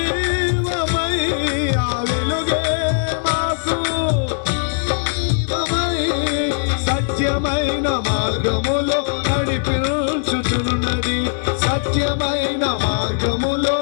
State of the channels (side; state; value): right; silent; 66 dB below the other